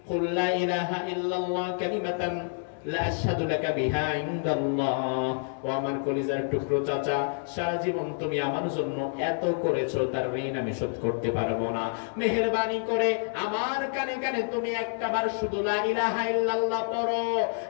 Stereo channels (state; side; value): silent; right; 59 dB below the other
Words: কুল লা ইলাহা ইল্লাল্লাহ কালিমাতান লা আশহাদু লাকা বিহা ইনদাল্লাহ। ও আমার কলিজার টুকরো চাচা, সারা জীবন তুমি আমার জন্য এত করেছো, তার ঋণ আমি শোধ করতে পারবো না। মেহেরবানি করে আমার কানে কানে তুমি একটাবার শুধু লা ইলাহা ইল্লাল্লাহ পড়ো,